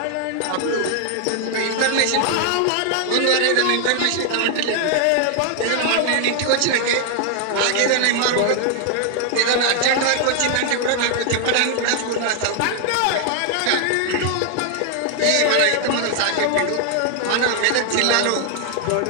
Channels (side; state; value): both; different; correlation 0.00